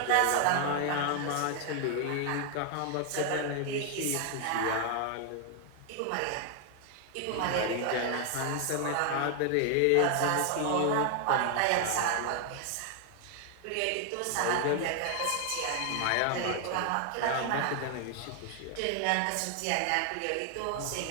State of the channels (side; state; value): both; different; correlation 0.00